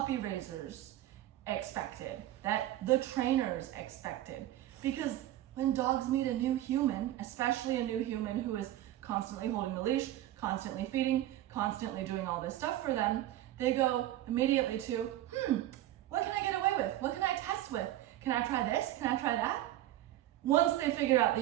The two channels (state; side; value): quieter; left; 14.1 dB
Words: raisers expected, that the trainers expected. Because when dogs meet a new human, especially a new human who is constantly holding the leash, constantly feeding, constantly doing all this stuff for them, they go immediately to, what can I get away with? What can I test with? Can I try this? Can I try that? Once they figure out